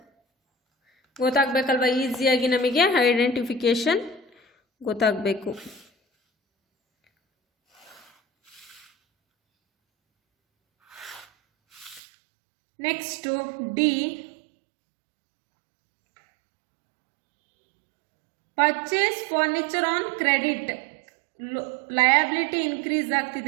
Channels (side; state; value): left; drops out; at 12.0 s